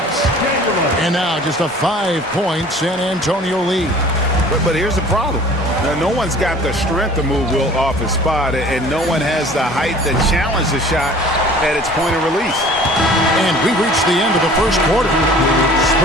And now just a 5-point San Antonio lead. But here's the problem. Now, no one's got the strength to move Wilt off his spot, and no one has the height to challenge the shot at its point of release. And we reach the end of the first quarter.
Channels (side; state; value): both; normal; correlation 0.48